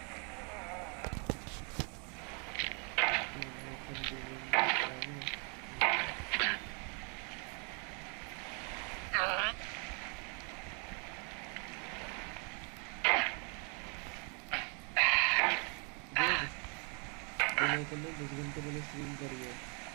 तुमने 10 घंटे पहले स्ट्रीम करी है।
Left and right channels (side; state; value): left; quieter; 36.3 dB